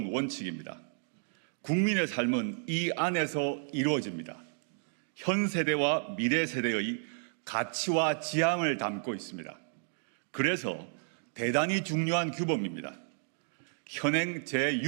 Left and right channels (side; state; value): left; silent; digital silence